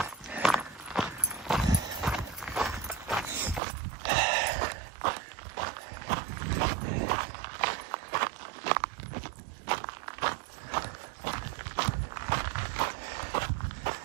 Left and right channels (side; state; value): left; drops out; at 3.6 s